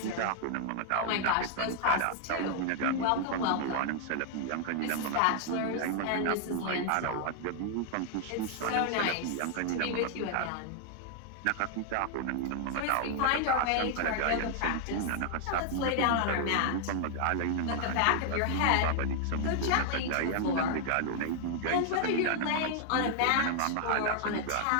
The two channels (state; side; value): different; both; correlation 0.00